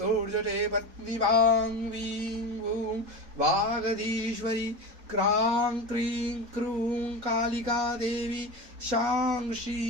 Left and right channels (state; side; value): late; left; 4.0 ms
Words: पत्नी भां वीं वूं वागधीश्वरी क्रां क्रीं क्रूं कालिका देवी शां